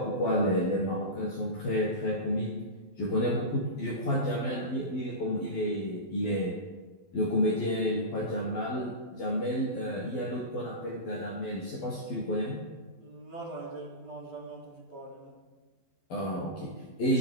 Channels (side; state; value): right; late; 12 ms